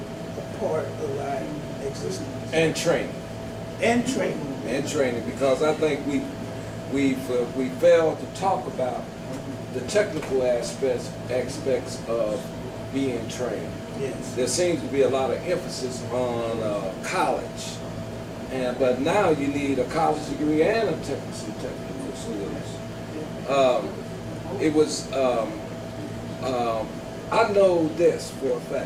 part of our existence. And training. And training. And training, because I think we failed to talk about the technical aspects of being trained. Yes. There seems to be a lot of emphasis on college, but now you need a college degree and a technical skills. I know this for a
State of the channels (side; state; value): both; identical; correlation 1.00